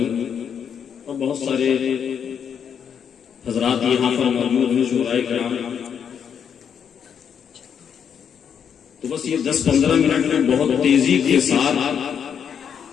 اور بہت سارے حضرات یہاں پر موجود ہیں، شعراء کرام. تو بس یہ 10-15 منٹ میں بہت تیزی کے ساتھ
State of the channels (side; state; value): right; quieter; 7.8 dB